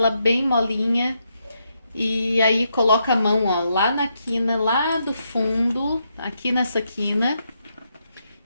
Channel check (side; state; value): both; inverted; correlation -0.80